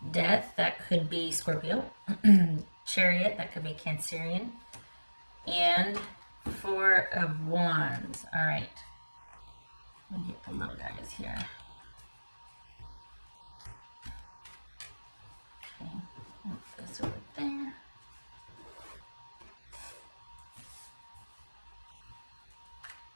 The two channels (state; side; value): inverted; both; correlation -1.00